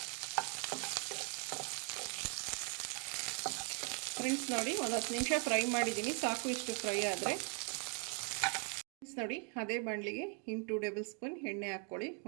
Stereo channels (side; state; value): left; quieter; 37.3 dB